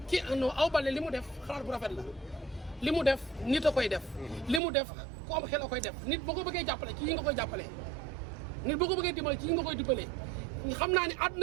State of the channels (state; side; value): drops out; left; at 4.6 s